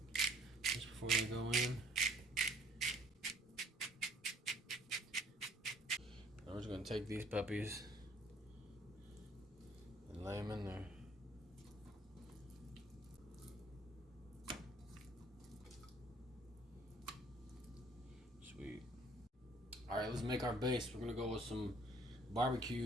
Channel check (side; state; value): both; normal; correlation 0.58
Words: just before they go in. I'm just gonna take these puppies and lay them in there. Sweet. All right, let's make our base. We're gonna go with some